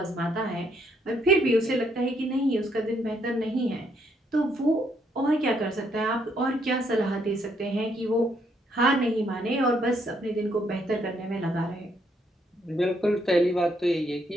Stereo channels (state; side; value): normal; both; correlation 0.72